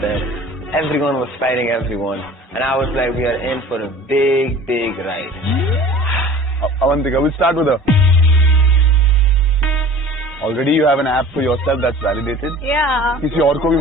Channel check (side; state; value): both; normal; correlation 0.43